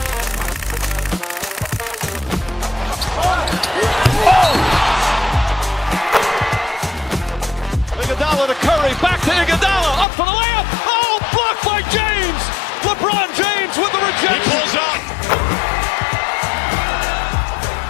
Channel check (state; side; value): drops out; right; at 10.1 s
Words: Iguodala to Curry, back to Iguodala, up for the layup. Oh, blocked by James. LeBron James with the rejection. He pulls up.